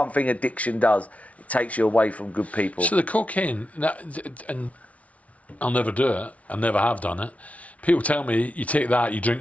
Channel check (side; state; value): right; late; 0.066 ms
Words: thing addiction does. It takes you away from good people. So the cocaine, and I'll never do it. I never have done it. People tell me you take that, you